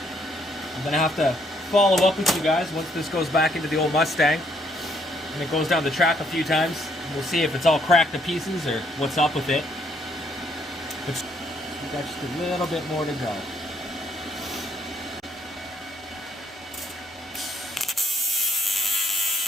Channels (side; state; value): both; normal; correlation 0.69